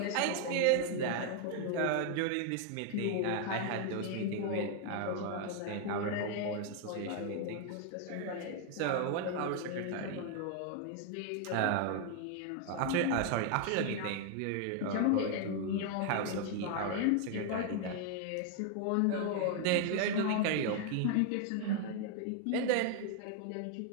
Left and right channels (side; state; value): both; different; correlation 0.00